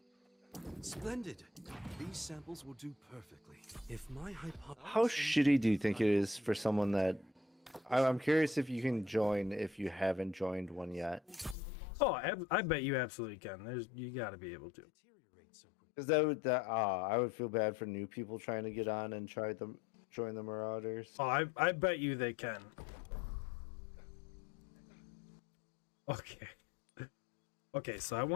Splendid. These samples will do perfectly. If my hypothesis... How shitty do you think it is for someone that... I'm curious if you can join if you haven't joined one yet. Oh, I bet you absolutely can. You gotta be able to. Because I would feel bad for new people trying to get on and join the Marauders. Oh, I bet you they can. Okay. Okay, so I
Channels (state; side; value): drops out; right; at 11.6 s